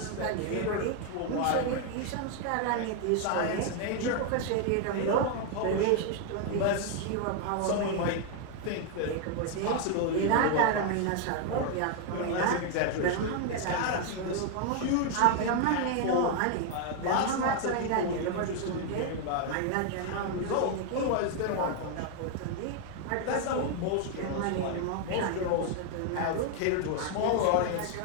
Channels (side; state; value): both; different; correlation 0.01